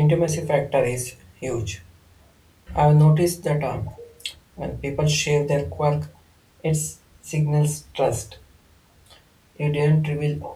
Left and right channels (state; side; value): identical; both; correlation 1.00